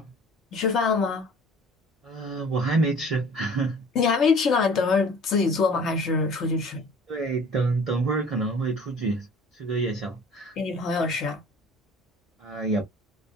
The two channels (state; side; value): normal; both; correlation 0.48